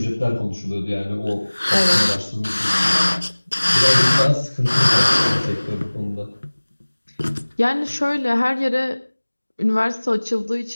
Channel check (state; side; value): inverted; both; correlation -1.00